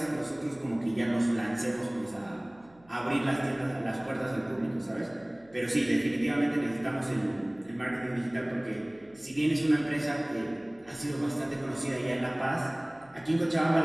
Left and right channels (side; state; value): right; noise; hum, 29 dB below the sound